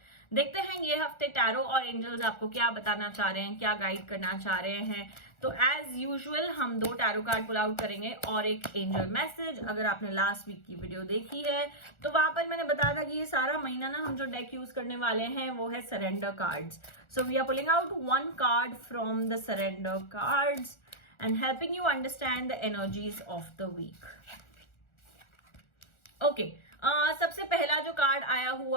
देखते हैं ये हफ्ते tarot और angels आपको क्या बताना चाह रहे हैं, क्या गाइड करना चाह रहे हैं. तो एज यूजुअल हम 2 टैरो कार्ड पुल आउट करेंगे और एक एंजल मैसेज. अगर आपने लास्ट वीक की वीडियो देखी है तो वहां पर मैंने बताया था कि ये सारा महीना ना हम जो डेक यूज करने वाले हैं वो है surrender cards. So we are pulling out 1 card from the surrender cards and helping you understand the energies of the week. Okay, सबसे पहला जो कार्ड आया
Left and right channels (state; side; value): late; right; 1.4 ms